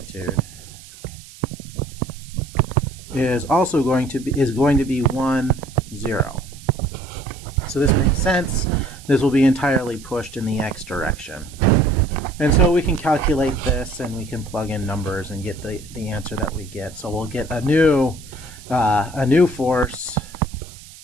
is also going to be 1, 0. So this makes sense. This will be entirely pushed in the x direction. And so we can calculate this and we can plug in numbers and get the answer that we get. So we'll get a new force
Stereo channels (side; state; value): right; noise; hiss, 19 dB below the sound